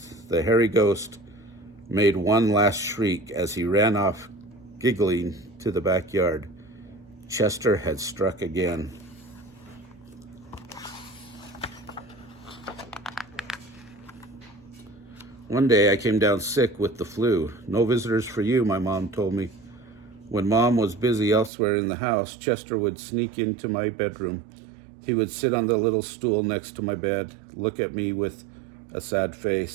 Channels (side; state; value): left; drops out; at 21.5 s